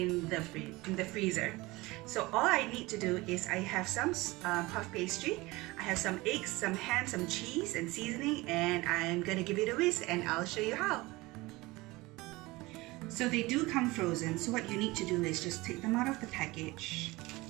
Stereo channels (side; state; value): left; quieter; 21.4 dB